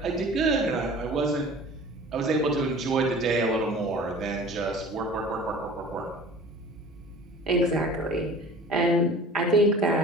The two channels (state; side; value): normal; both; correlation 0.43